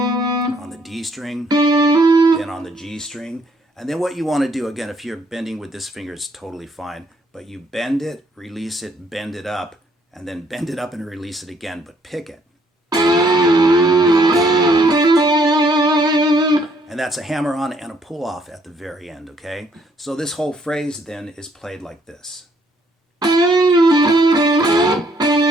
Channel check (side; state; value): both; normal; correlation 0.67